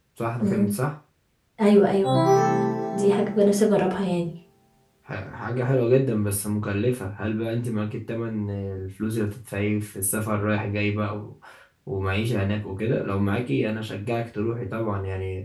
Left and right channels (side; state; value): both; identical; correlation 1.00